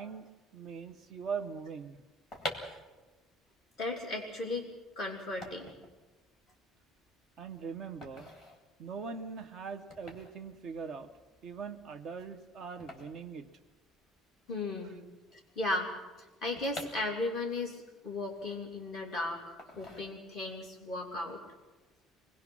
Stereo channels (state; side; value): normal; both; correlation 0.46